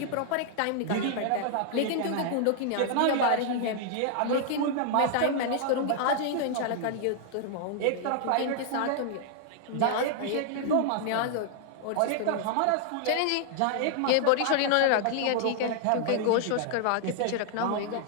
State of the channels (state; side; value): different; both; correlation -0.01